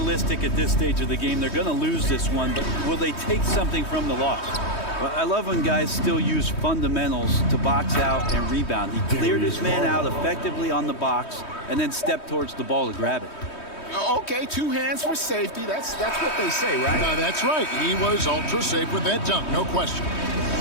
at this stage of the game, they're going to lose this one, but will they take something from the loss? Well, I love when guys still use fundamentals to box out and rebound. He cleared his man out effectively on the box and then stepped towards the ball to grab it. Okay, 2 hands for safety. That's what they say, right? That's right. He was ultra safe with that dunk, no question.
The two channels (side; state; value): right; late; 3.2 ms